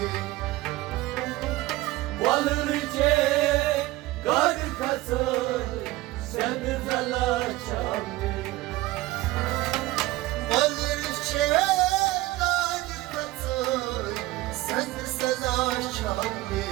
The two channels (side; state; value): left; quieter; 18.3 dB